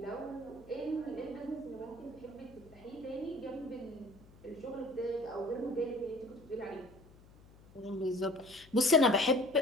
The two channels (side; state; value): left; noise; hum, 23 dB below the sound